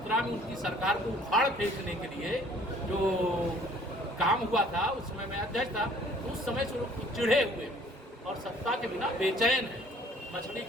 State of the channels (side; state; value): both; normal; correlation 0.56